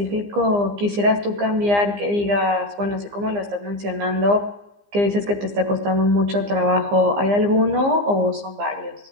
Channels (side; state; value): left; late; 15 ms